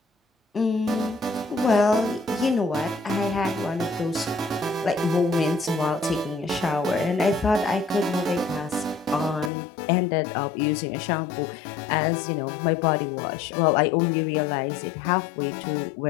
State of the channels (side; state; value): right; drops out; at 9.5 s